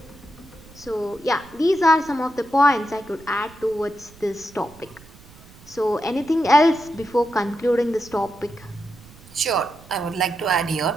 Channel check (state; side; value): noise; right; rumble, 22 dB below the sound